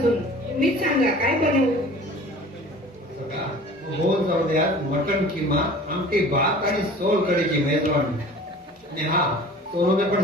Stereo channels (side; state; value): both; normal; correlation 0.44